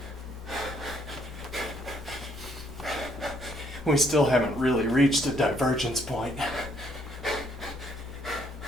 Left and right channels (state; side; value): normal; both; correlation 0.68